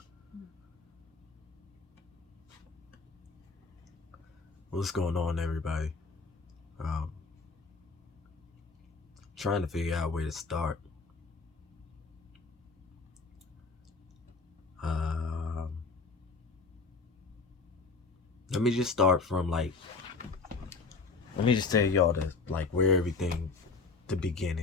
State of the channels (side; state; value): right; quieter; 4.3 dB